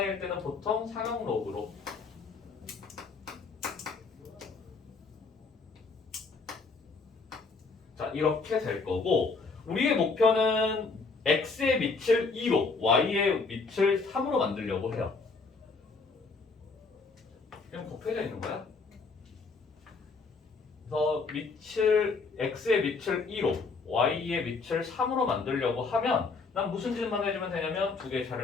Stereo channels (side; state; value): right; quieter; 4.3 dB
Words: 때는 보통 상형 로그로. 자, 이렇게 될 거고 우리의 목표는 x의 밑을 2로, y의 밑을 3으로 만들려고 해요. 그냥 곱해져 있는 거야. 그래서 x의 밑을 2로, y의 밑을 3으로 만들려고 하면 난 무슨 짓만 해주면 되냐면 두 개의